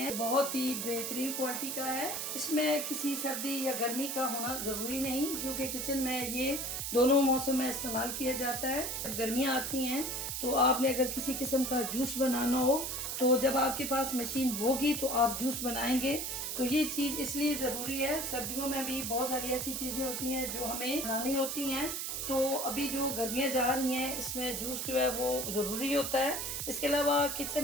बहुत ही बेहतरीन क्वालिटी का है। इसमें किसी सर्दी या गर्मी का होना ज़रूरी नहीं, क्योंकि किचन में ये दोनों मौसम में इस्तेमाल किया जाता है। जब गर्मियाँ आती हैं तो आपने अगर किसी किस्म का जूस बनाना हो, तो जब आपके पास मशीन होगी तो आप जूस बनाएंगे। तो ये चीज़ इसलिए ज़रूरी है। सर्दियों में भी बहुत सारी ऐसी चीज़ें होती हैं जो हमें बनानी होती हैं। तो अभी जो गर्मियाँ जा रही हैं, इसमें जूस जो है वो ज़रूरी होता है। इसके अलावा किचन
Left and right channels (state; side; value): noise; right; hiss, 3 dB below the sound